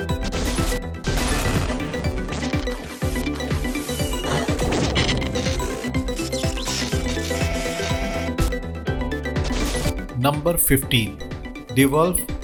Number 15, devolve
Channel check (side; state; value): both; identical; correlation 1.00